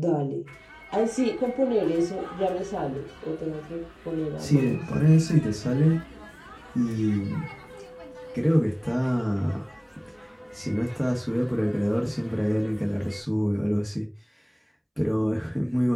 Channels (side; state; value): both; identical; correlation 1.00